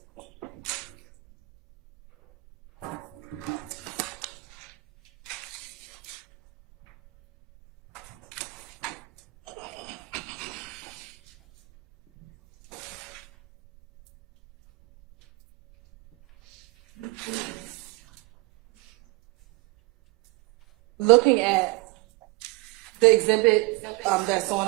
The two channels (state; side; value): quieter; left; 22.9 dB